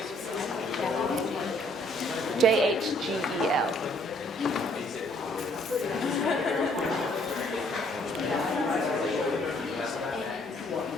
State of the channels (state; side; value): normal; both; correlation 0.64